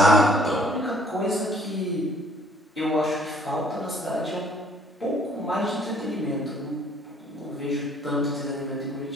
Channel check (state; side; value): normal; both; correlation 0.59